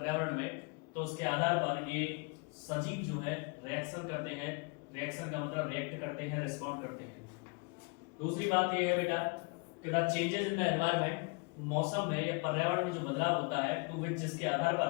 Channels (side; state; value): right; quieter; 31.9 dB